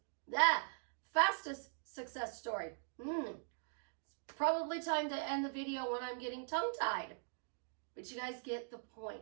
success story. It's probably time to end the video when I'm getting tongue-tied. But you guys get the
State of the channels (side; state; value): left; silent; digital silence